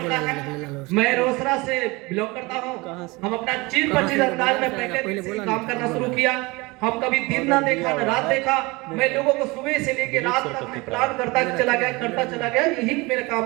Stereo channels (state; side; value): quieter; left; 24.2 dB